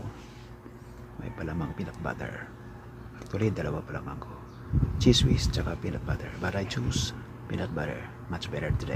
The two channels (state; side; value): identical; both; correlation 1.00